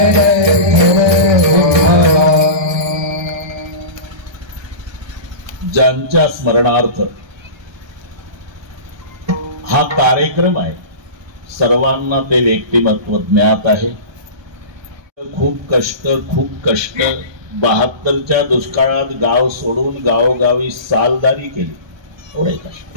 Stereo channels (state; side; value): late; left; 1.2 ms